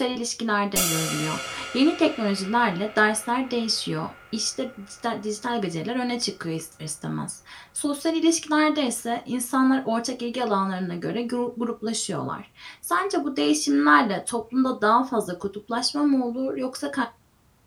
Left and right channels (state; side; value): identical; both; correlation 1.00